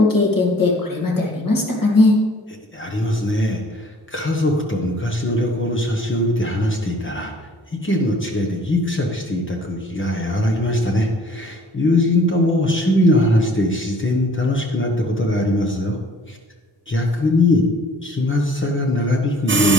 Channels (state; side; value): normal; both; correlation 0.55